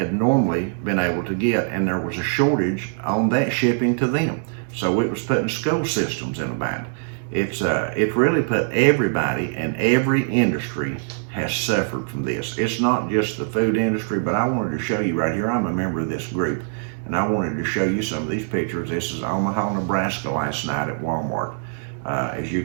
normally been able to get, and there was a shortage on that shipping to them. So it was putting school systems in a bind. It's really put everybody, and every industry has suffered from this. It's not just the food industry, but I wanted to show you right here, I'm a member of this group, and I wanted to show you some of these pictures. This is Omaha, Nebraska last night at Walmart. As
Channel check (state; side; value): silent; left; digital silence